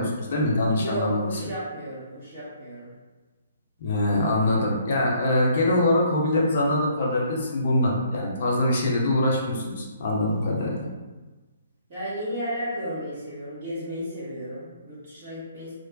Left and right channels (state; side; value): inverted; both; correlation -0.64